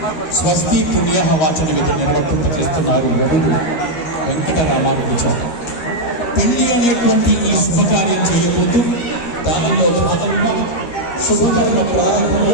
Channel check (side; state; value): right; late; 13 ms